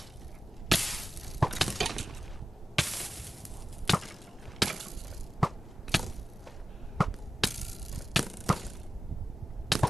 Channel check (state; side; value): normal; both; correlation 0.95